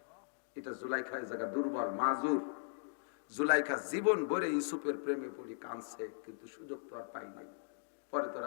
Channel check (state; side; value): silent; right; digital silence